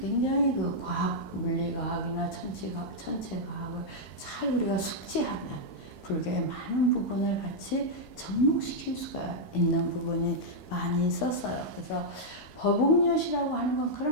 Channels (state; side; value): normal; both; correlation -0.06